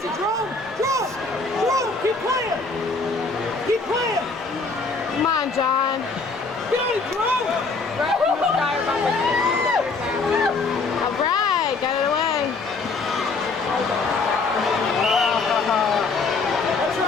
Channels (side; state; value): right; quieter; 4.1 dB